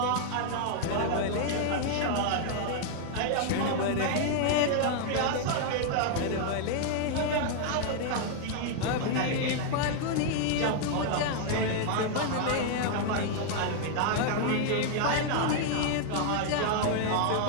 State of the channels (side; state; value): both; different; correlation 0.00